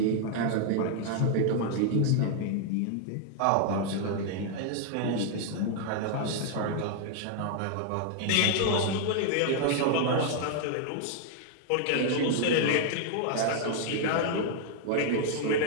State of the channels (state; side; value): different; both; correlation 0.00